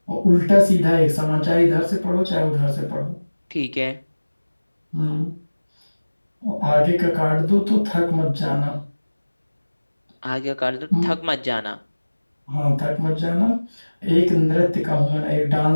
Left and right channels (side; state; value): both; inverted; correlation -1.00